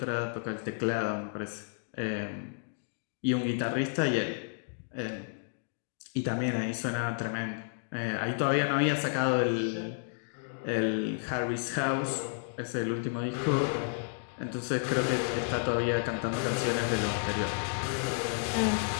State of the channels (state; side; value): silent; right; digital silence